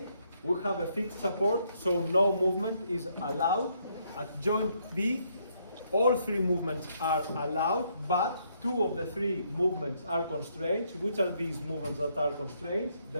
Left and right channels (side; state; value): both; inverted; correlation -0.72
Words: we have a fixed support, so no movement is allowed. At joint B, all 3 movements are allowed, but 2 of the 3 movements are constraints. Which are these movements that are constraints?